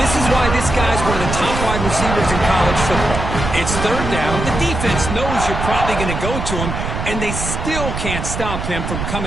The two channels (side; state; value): right; noise; rumble, 4 dB below the sound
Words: this is why this guy's one of the top wide receivers in college football. It's third down. The defense knows you're probably going to go to him, and they still can't stop him from